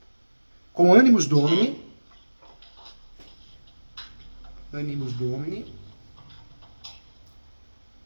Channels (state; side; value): inverted; both; correlation -1.00